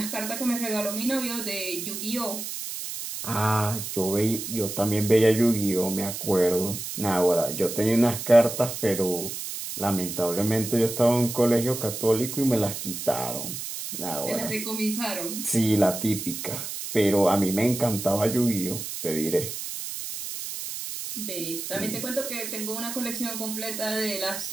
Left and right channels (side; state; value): right; noise; hiss, 7 dB below the sound